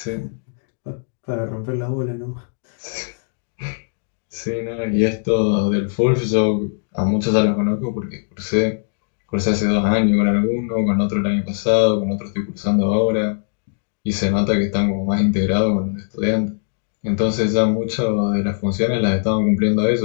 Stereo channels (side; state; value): right; silent; 65 dB below the other